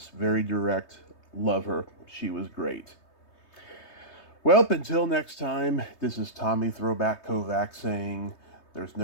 Very direct. Love her. She was great. Well, until next time, this is Tommy Throwback Kovac saying, there's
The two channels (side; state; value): right; late; 3.2 ms